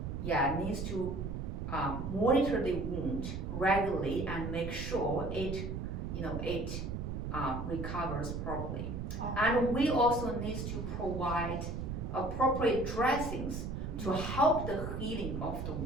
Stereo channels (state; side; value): noise; right; rumble, 4 dB below the sound